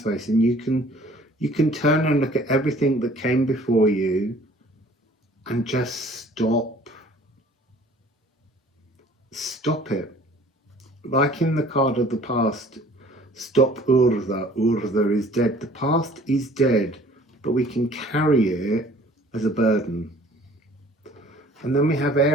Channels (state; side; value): normal; both; correlation 0.52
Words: face, and you can turn and look at everything that came before you and just stop it. Like in the card of the past, stop Urza. Urza is dead. The past is dead, but we can carry it as a burden. And then we have